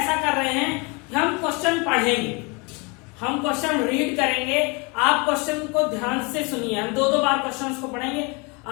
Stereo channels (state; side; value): quieter; right; 29.8 dB